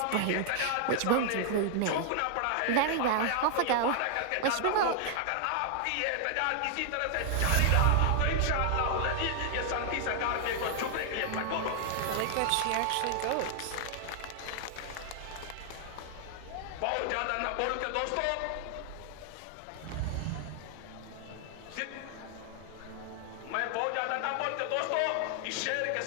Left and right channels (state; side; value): different; both; correlation -0.01